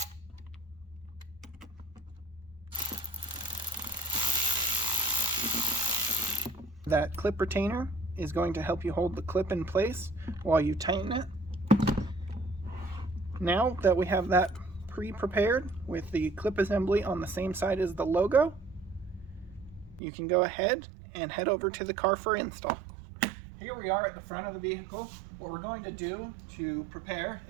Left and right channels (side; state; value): left; drops out; at 20.0 s